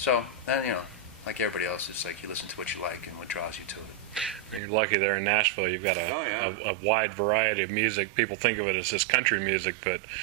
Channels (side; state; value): left; drops out; at 4.6 s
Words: then like everybody else, it's like you listen to what you like and what draws you to it. You're lucky there in Nashville. You've got a wide variety of music. People think of it as just country music, but